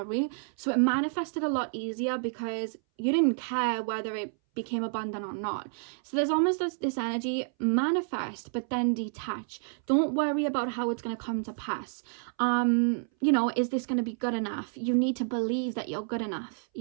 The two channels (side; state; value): left; silent; 58 dB below the other